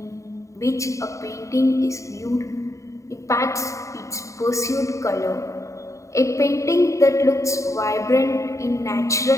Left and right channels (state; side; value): late; right; 0.15 ms